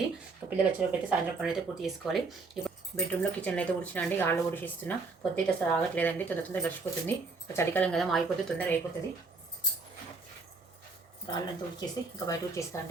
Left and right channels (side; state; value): left; quieter; 4.0 dB